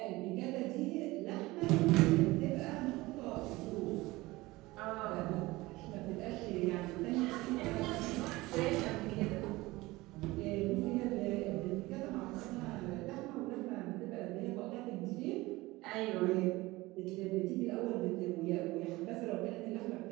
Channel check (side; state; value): left; quieter; 20.3 dB